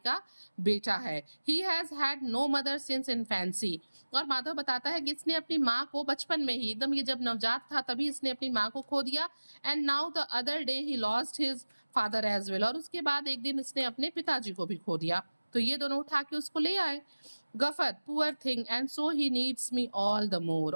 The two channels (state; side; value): inverted; both; correlation -1.00